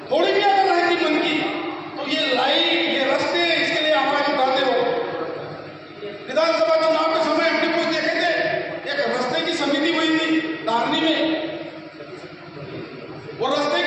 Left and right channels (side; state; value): both; identical; correlation 1.00